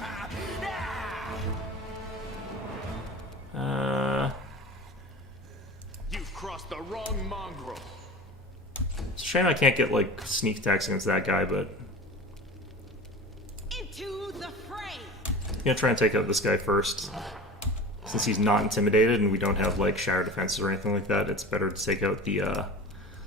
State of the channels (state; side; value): normal; both; correlation 0.35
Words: You've crossed the wrong mongrel. It's a shame I can't get like sneak attacks against that guy, but Into the fray. I'm gonna try and take out this guy first. Since he's not intimidated and we don't have like shatter defenses or anything like that, it's better to take out the